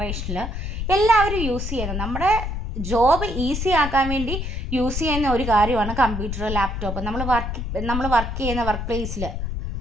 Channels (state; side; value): noise; left; rumble, 4 dB below the sound